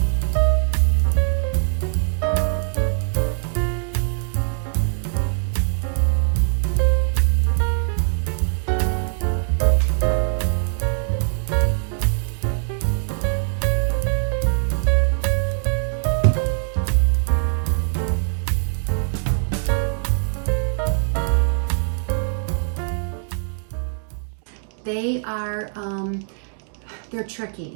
They are, they're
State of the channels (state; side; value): silent; left; digital silence